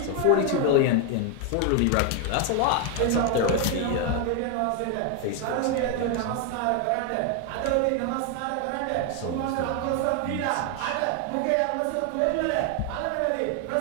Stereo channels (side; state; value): both; different; correlation 0.01